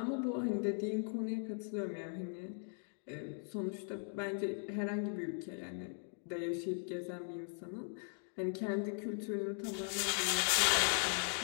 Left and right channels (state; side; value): silent; right; 52 dB below the other